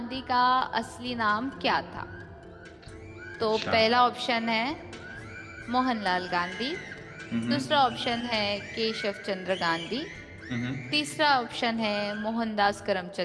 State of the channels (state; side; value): identical; both; correlation 1.00